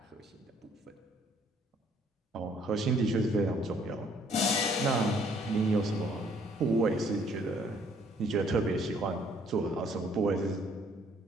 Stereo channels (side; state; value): both; normal; correlation 0.62